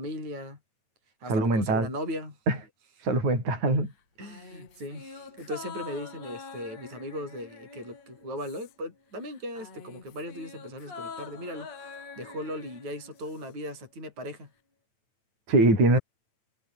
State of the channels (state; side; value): late; left; 9.0 ms